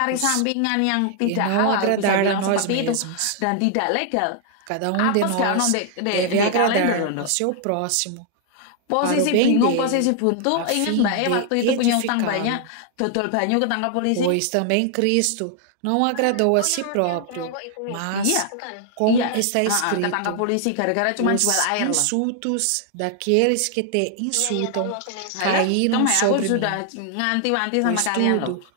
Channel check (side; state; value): both; different; correlation 0.00